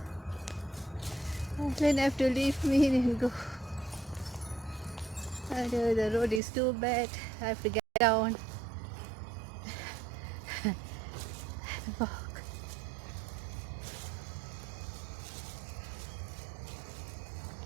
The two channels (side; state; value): left; drops out; at 6.4 s